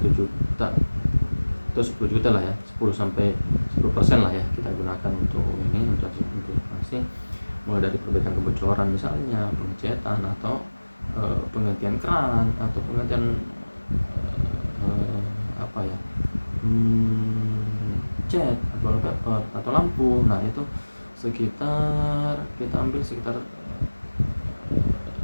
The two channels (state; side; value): inverted; both; correlation -1.00